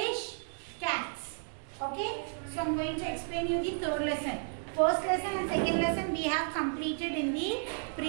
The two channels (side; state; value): left; silent; digital silence